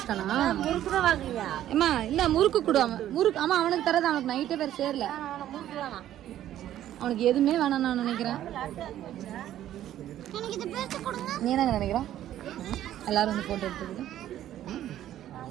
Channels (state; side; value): quieter; left; 12.2 dB